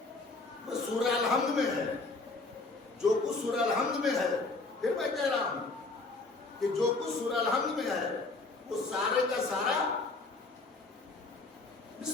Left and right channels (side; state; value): right; quieter; 3.5 dB